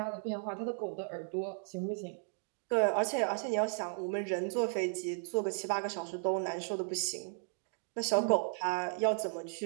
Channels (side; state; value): left; silent; 54 dB below the other